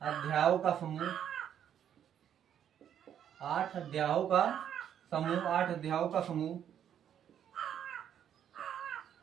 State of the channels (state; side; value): quieter; left; 9.5 dB